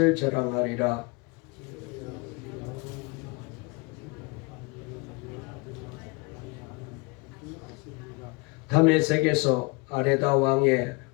자랑하리라. 다메섹에서 아레다 왕의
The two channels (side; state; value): right; quieter; 28.3 dB